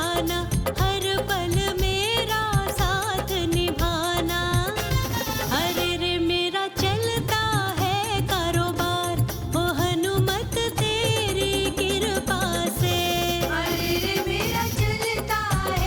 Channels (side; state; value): both; identical; correlation 1.00